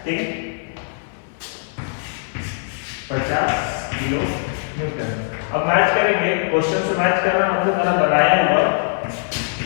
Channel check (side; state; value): right; silent; 61 dB below the other